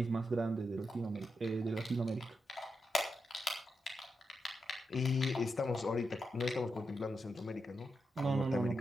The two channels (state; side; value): normal; both; correlation 0.86